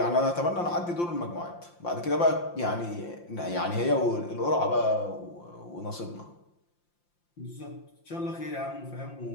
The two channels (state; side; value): late; right; 5.8 ms